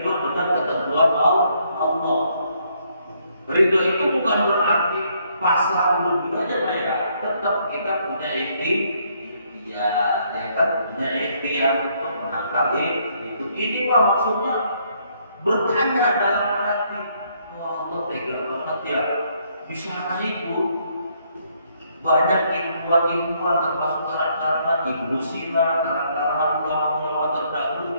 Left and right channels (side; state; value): both; inverted; correlation -0.70